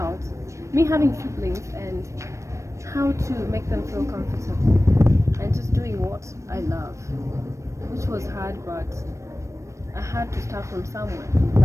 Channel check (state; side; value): late; left; 0.15 ms